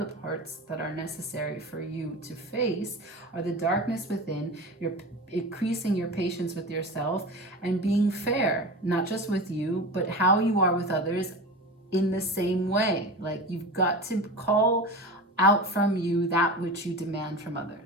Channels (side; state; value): both; normal; correlation 0.30